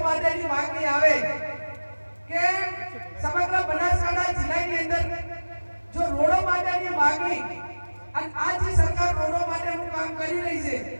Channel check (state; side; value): inverted; both; correlation -1.00